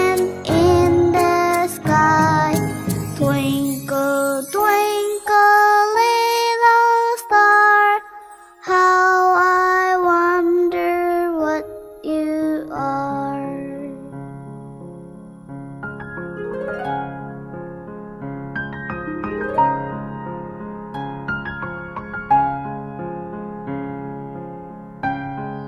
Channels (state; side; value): identical; both; correlation 1.00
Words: in the sky. Twinkle, twinkle, little star, how I wonder what you are.